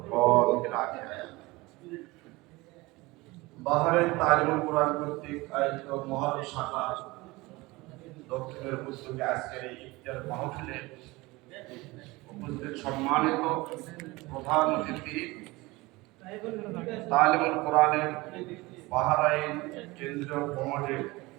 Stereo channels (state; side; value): quieter; left; 22.0 dB